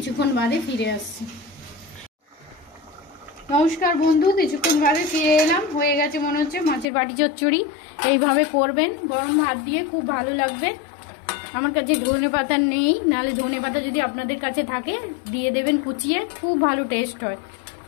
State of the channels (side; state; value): right; drops out; at 6.9 s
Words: বাদে ফিরে আসছি। নমস্কার বন্ধু, কিছুক্ষণ বাদে ফিরে এলাম। হয়ে গেছে মনে হচ্ছে মাছের বাটি চচ্চড়ি। এইভাবে করবেন, গরম ভাত দিয়ে খুব ভালো লাগবে। আমার কাছে ধনে পাতা নেই, নাহলে ধনে পাতা যদি আপনাদের কাছে থাকে দিয়ে দেবেন কুচিয়ে, খুব ভালো টেস্ট হয়।